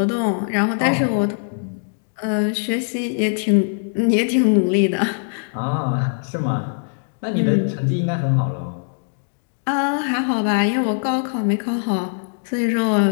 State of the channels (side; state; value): right; silent; digital silence